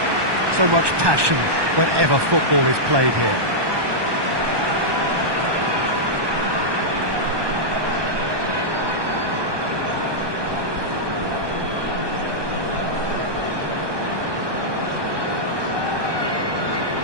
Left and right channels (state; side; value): late; left; 1.2 ms